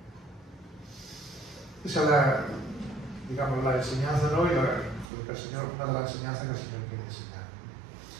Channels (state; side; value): drops out; left; at 5.1 s